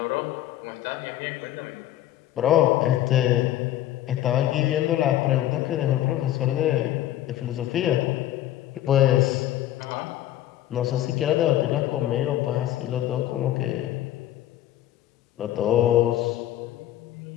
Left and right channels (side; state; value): right; quieter; 13.2 dB